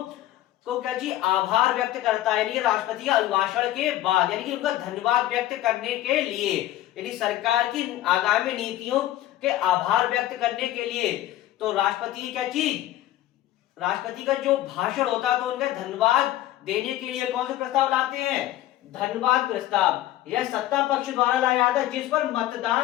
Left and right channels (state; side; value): quieter; right; 14.3 dB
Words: को क्या जी आभार व्यक्त करता है, यानी राष्ट्रपति के अभिभाषण के बाद, यानी कि उनका धन्यवाद व्यक्त करने के लिए, यानी सरकार की आगामी नीतियों के आभार व्यक्त करने के लिए। तो राष्ट्रपति की क्या चीज, राष्ट्रपति का जो भाषण होता है तो उनका धन्यवाद देने के लिए कौन से प्रस्ताव लाते हैं, धन्यवाद प्रस्ताव। यह सत्ता पक्ष द्वारा लाया जाता है जिस पर